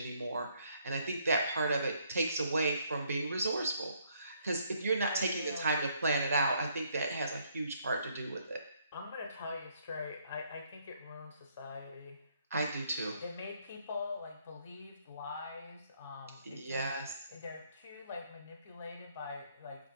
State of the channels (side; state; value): both; inverted; correlation -0.69